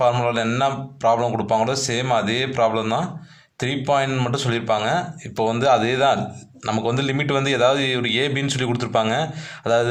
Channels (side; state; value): both; identical; correlation 1.00